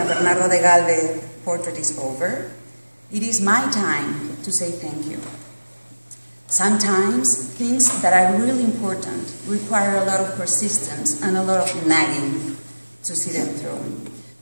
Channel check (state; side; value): inverted; both; correlation -1.00